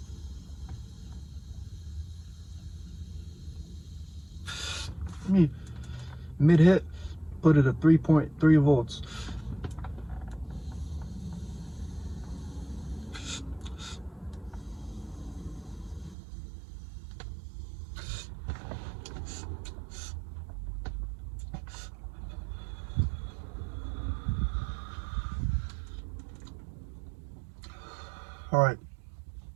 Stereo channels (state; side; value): drops out; left; at 16.2 s